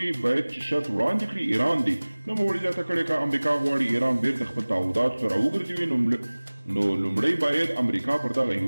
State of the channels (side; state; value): both; inverted; correlation -1.00